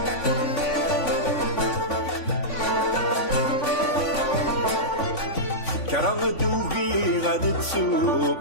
كرم دوبي غاد تسوق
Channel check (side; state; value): right; late; 3.5 ms